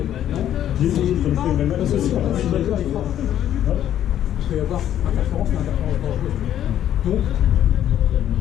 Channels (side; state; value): right; quieter; 11.1 dB